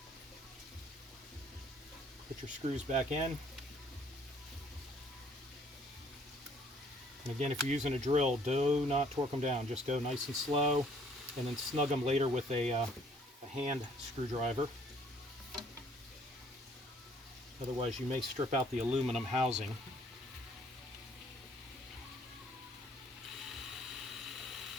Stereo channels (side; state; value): both; normal; correlation 0.61